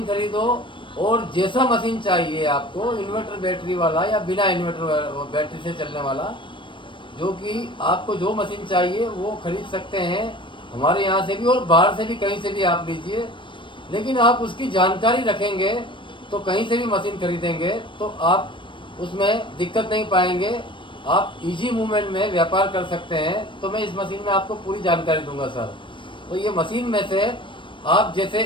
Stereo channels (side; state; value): right; late; 0.24 ms